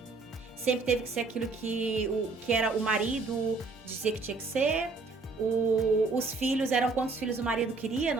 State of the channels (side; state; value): left; quieter; 3.9 dB